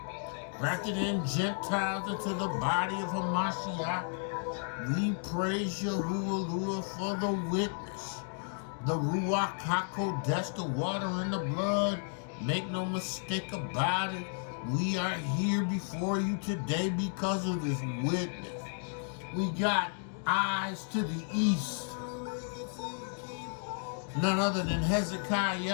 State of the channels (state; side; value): silent; right; 56 dB below the other